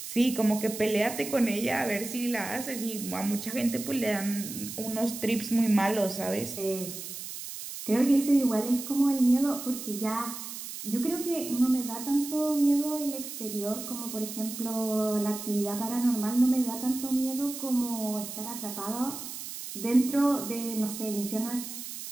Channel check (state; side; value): noise; right; hiss, 9 dB below the sound